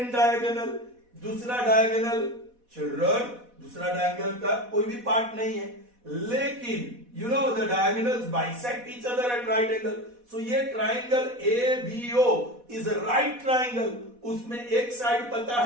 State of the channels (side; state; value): left; late; 4.1 ms